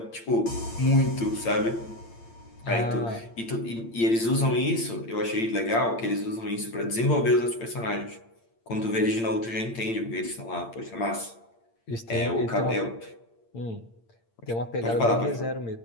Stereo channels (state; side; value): late; right; 8.8 ms